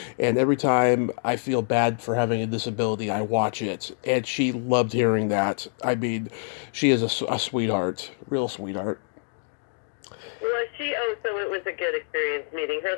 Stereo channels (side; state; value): right; silent; digital silence